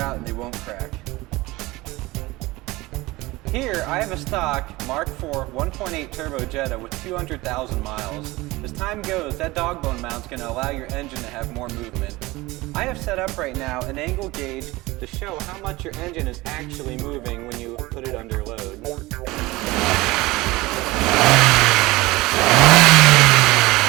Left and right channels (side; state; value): left; quieter; 20.5 dB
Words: out and they won't crack. Here, I have a stock Mark IV 1.8 turbo Jetta with 200,000 miles. As time goes, that Dogbone mount's going to allow your engine to have more movement. I have set up right now an angle gauge to show how much your engine is actually moving when you put it under load.